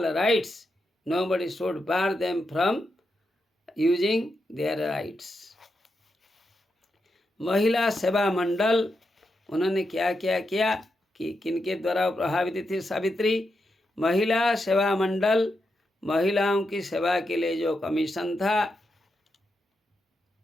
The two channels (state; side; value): normal; both; correlation 0.85